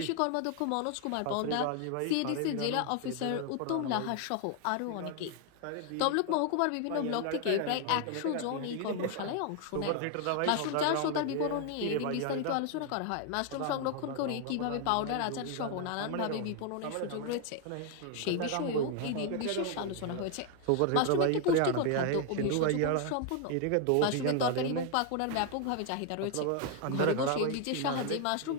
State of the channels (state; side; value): different; both; correlation 0.00